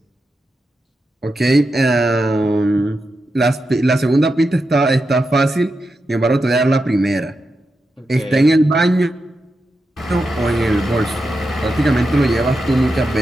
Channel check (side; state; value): both; normal; correlation 0.88